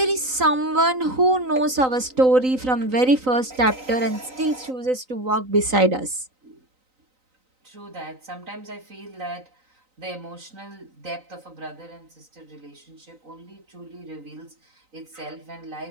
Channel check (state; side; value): late; left; 3.9 ms